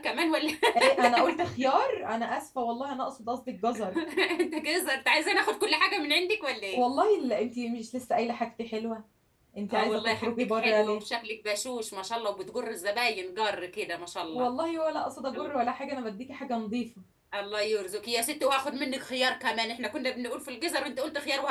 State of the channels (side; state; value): both; identical; correlation 1.00